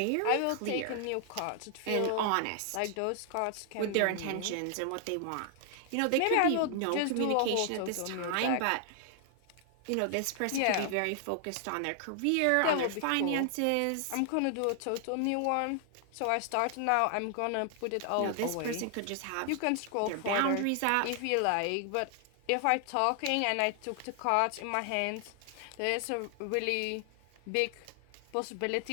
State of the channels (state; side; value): different; both; correlation 0.00